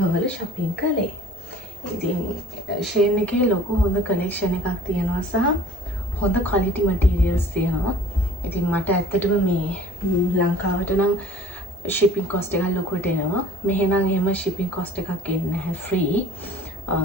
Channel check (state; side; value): normal; both; correlation 0.50